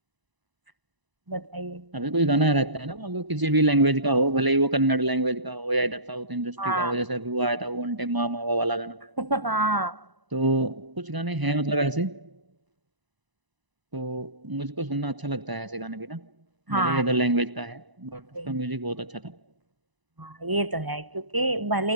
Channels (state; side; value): late; left; 1.0 ms